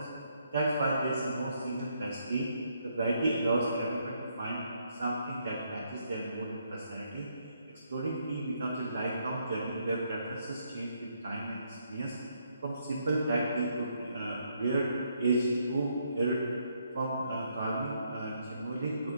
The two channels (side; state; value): both; inverted; correlation -0.74